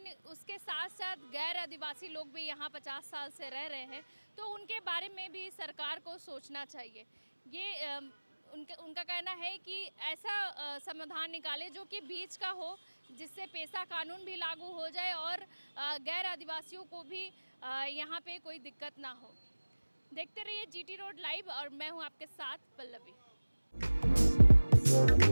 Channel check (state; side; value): inverted; both; correlation -1.00